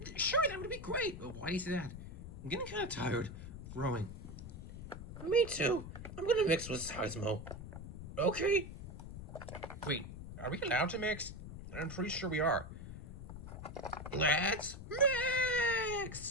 Sure, that would be great. But why do you say that? I'm getting kind of tired of growing. Me too. I'm gonna mix with Seismo. Okay. Wait, are we allowed to mix? I'm pretty sure we are. Let's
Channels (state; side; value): noise; left; rumble, 10 dB below the sound